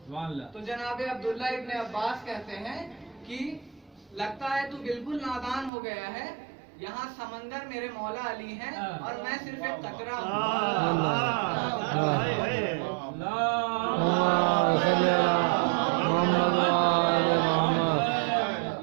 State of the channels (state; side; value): drops out; left; at 5.7 s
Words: तो जनाब अब्दुल्ला इब्ने अब्बास कहते हैं कि लगता है तू बिल्कुल नादान हो गया है, यहाँ समंदर मेरे मौला अली हैं और मैं सिर्फ एक कतरा हूँ।